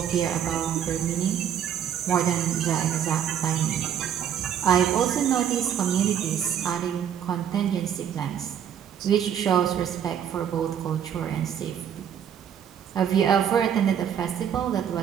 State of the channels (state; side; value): quieter; left; 9.0 dB